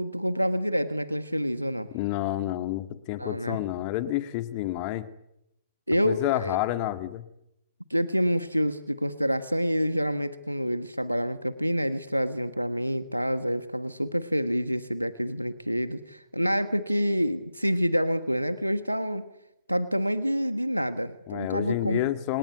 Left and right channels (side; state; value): both; inverted; correlation -0.82